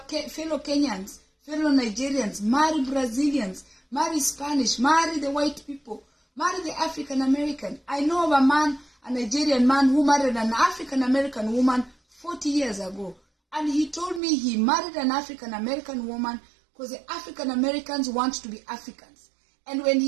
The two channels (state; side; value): drops out; left; at 14.2 s